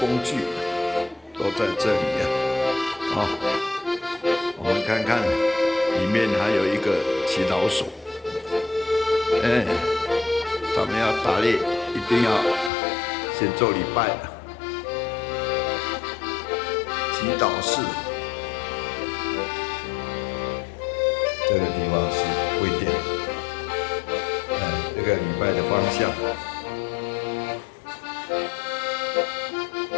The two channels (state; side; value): drops out; right; at 12.7 s